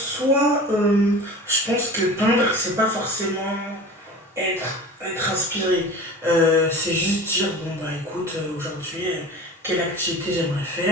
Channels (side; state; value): both; normal; correlation 0.37